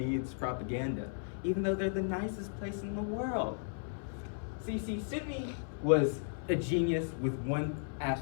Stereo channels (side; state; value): right; silent; 54 dB below the other